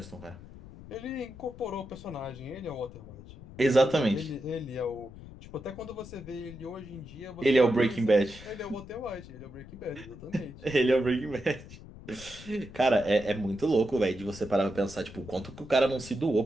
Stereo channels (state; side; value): noise; left; rumble, 16 dB below the sound